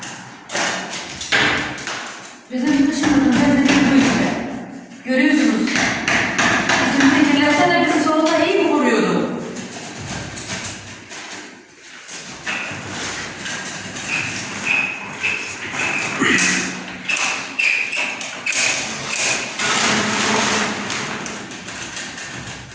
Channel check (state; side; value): identical; both; correlation 1.00